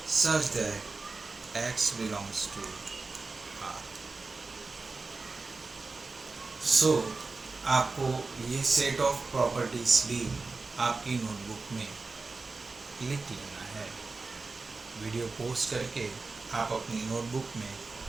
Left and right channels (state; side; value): quieter; left; 3.9 dB